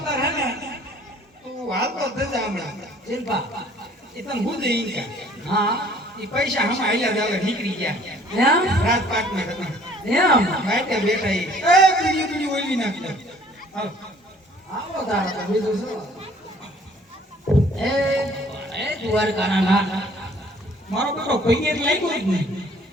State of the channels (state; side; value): normal; both; correlation 0.56